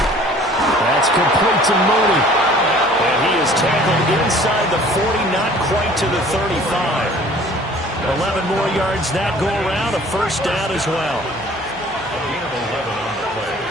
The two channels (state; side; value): noise; left; hum, 24 dB below the sound